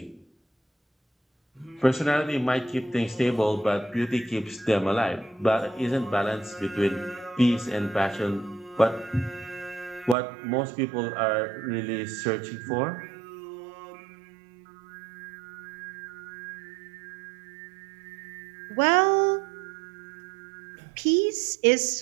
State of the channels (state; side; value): drops out; left; at 10.2 s